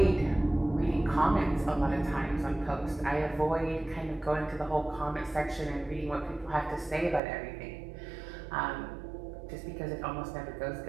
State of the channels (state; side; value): drops out; left; at 7.2 s